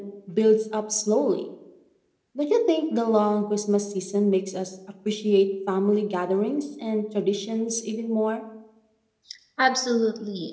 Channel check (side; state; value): both; identical; correlation 1.00